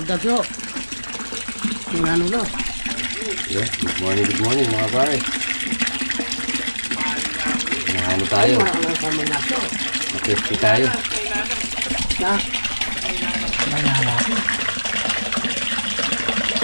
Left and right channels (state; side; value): inverted; both; correlation -1.00